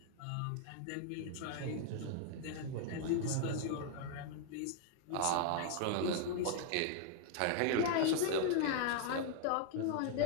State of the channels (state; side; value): different; both; correlation 0.00